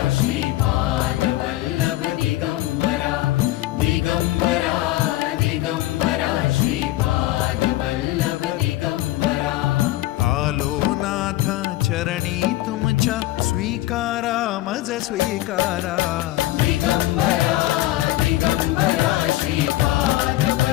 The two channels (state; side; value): quieter; right; 16.4 dB